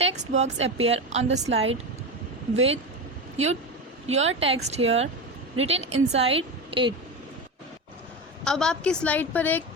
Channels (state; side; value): normal; both; correlation 0.20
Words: box appear on the slide with your text here written inside it. अब आपकी स्लाइड पर एक